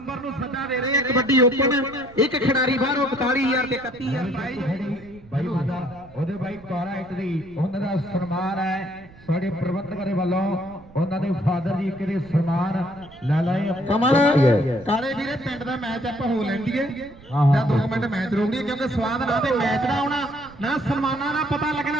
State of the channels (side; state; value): right; noise; rumble, 22 dB below the sound